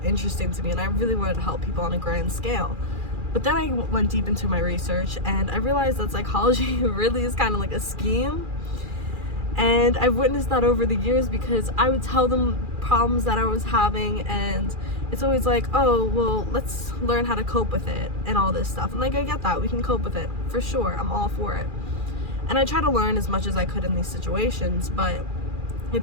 interesting to me, and I really wanted to help people on a grand scale. But then I went deep into my research, and I realized that psychology really is kind of like a scheme. And I've witnessed that over the years because I would tell them problems that I was having, and it's always like, oh, well, let's learn how to cope with it and all this stuff. And like, I get that, we can cope with it for sure, I'm all for it. And I try to learn as much as I could in these situations, but it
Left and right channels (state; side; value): late; left; 2.4 ms